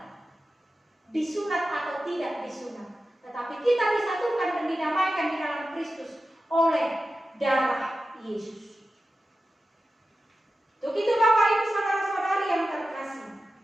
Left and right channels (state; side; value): normal; both; correlation 0.93